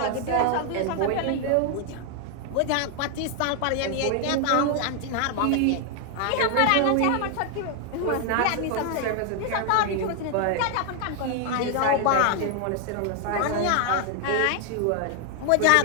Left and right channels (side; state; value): both; different; correlation 0.00